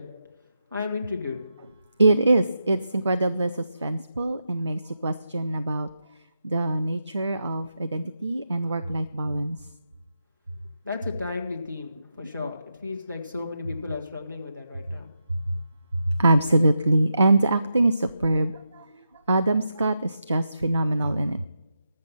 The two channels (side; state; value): both; inverted; correlation -0.86